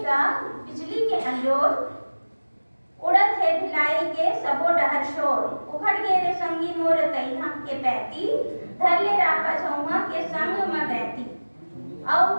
बिजली के अंजोर। उड़द है भिलाई के सबो डहर शोर, उखड़ गे रे संगी मोर तैहा के पैती, धर ले रापा छौहा के संग में गैती। और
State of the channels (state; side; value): inverted; both; correlation -1.00